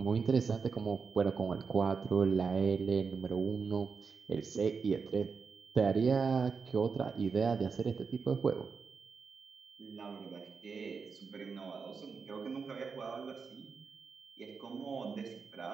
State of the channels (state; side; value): quieter; left; 5.3 dB